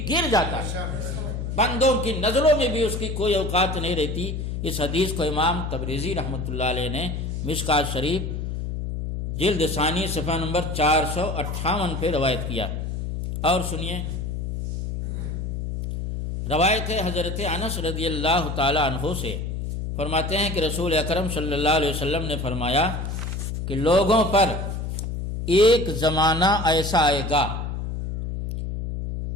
گر جاتا ہے، بندوں کی نظروں میں بھی اس کی کوئی اوقات نہیں رہتی۔ اس حدیث کو امام تبریزی رحمۃ اللہ علیہ نے مشکات شریف جلد ثانی صفحہ نمبر 458 پہ روایت کیا۔ اور سنیے روایت ہے حضرت انس رضی اللہ تعالی عنہ سے، فرماتے ہیں کہ رسول اکرم صلی اللہ علیہ وسلم نے فرمایا کہ لوگوں پر ایک زمانہ ایسا آئے گا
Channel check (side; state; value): left; noise; hum, 4 dB below the sound